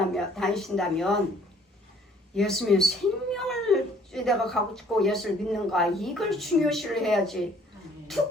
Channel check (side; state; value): both; normal; correlation 0.58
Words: 예수님의 생명을 내가 갖고 예수를 믿는가 이걸 중요시를 해야지.